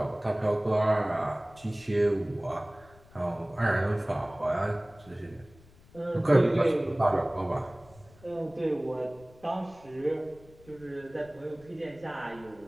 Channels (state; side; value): noise; left; rumble, 25 dB below the sound